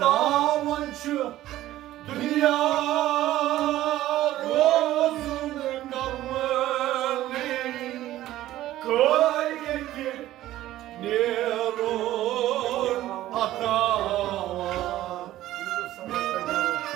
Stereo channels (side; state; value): left; quieter; 14.5 dB